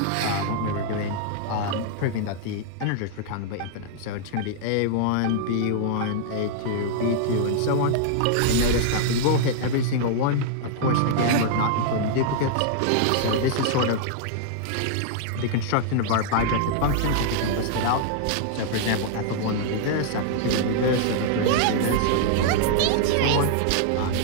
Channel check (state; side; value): different; both; correlation -0.01